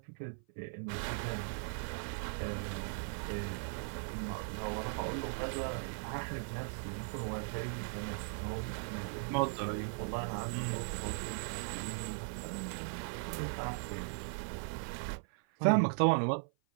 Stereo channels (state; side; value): silent; left; 52 dB below the other